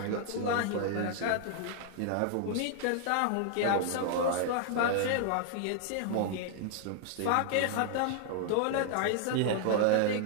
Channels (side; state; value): both; different; correlation 0.00